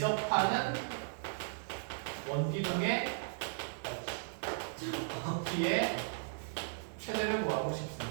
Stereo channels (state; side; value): silent; left; 53 dB below the other